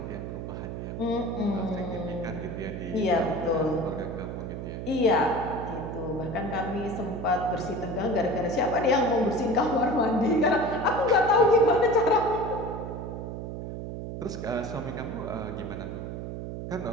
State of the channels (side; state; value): right; noise; hum, 7 dB below the sound